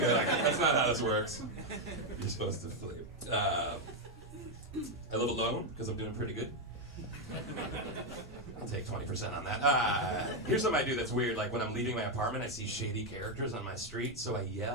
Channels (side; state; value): both; normal; correlation 0.04